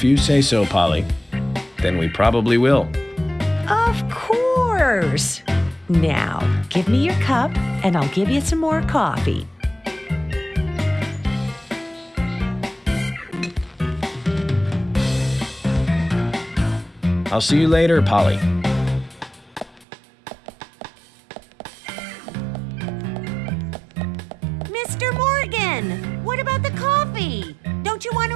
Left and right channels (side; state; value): left; drops out; at 19.9 s